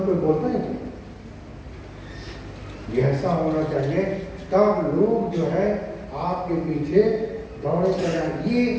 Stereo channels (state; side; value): identical; both; correlation 1.00